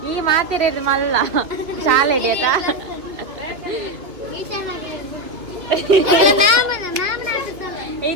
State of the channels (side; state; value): left; late; 3.0 ms